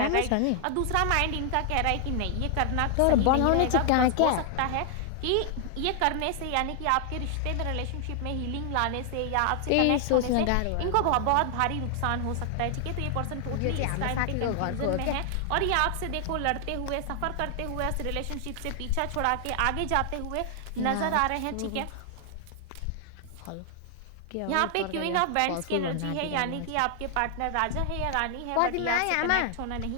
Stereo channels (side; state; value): both; different; correlation 0.00